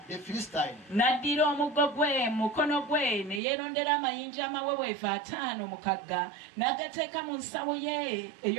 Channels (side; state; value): left; drops out; at 3.4 s